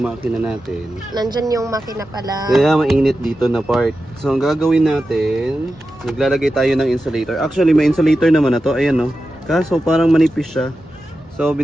makina natin, nandyan yung makina pala. kaya mainit dito na part. So, ang gagawin natin, naglalagay tayo ng insulator. Actually, may insulator naman na to. Ayan, no? Kaso, parang manipis siya. So,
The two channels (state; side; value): normal; both; correlation 0.91